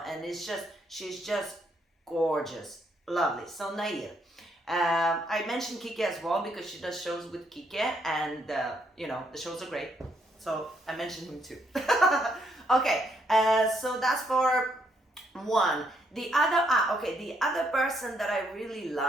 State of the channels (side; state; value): both; normal; correlation 0.73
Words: And it's just, she's just gorgeous, lovely. So Nahir, I mentioned Kike as well because she does shows with Kike, and you know, the shows are great, so I mentioned him too. Okay, so that's for one. The other the other person that I really